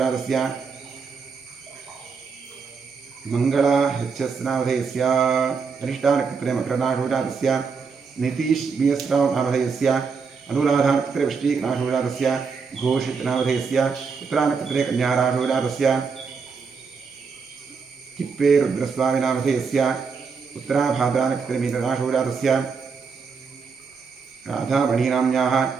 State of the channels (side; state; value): left; quieter; 5.4 dB